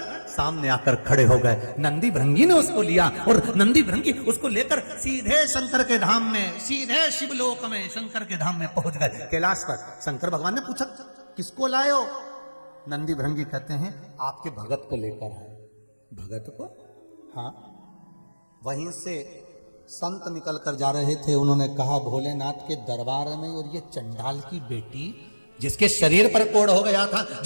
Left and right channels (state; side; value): inverted; both; correlation -1.00